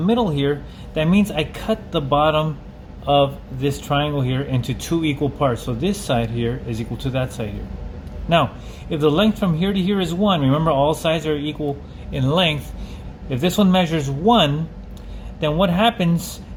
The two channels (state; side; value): identical; both; correlation 1.00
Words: here, that means I cut the bottom of this triangle here into 2 equal parts. So this side here is equal to that side here. Now, if the length from here to here is 1, remember all sides are equal in length. If this one measures 1, then what happens